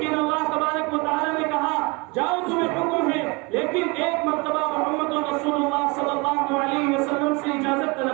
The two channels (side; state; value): left; quieter; 27.9 dB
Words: اللہ تبارک و تعالیٰ نے کہا جاؤ تمہیں حکم ہے، لیکن ایک مرتبہ محمد رسول اللہ صلی اللہ علیہ وسلم سے اجازت